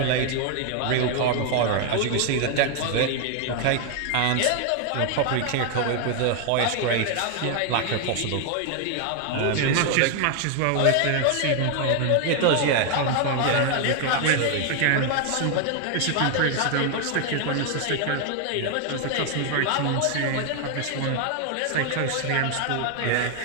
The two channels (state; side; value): different; both; correlation 0.00